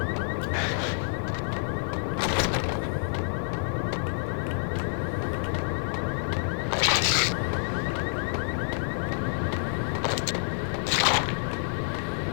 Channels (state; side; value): silent; right; 59 dB below the other